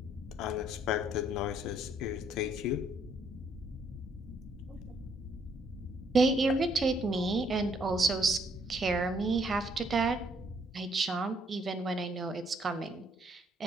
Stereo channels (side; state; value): both; normal; correlation 0.68